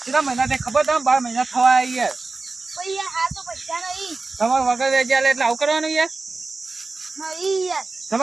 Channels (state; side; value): quieter; left; 3.7 dB